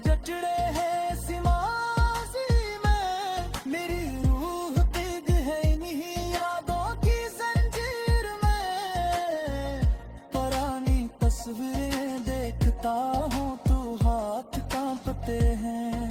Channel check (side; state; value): both; identical; correlation 1.00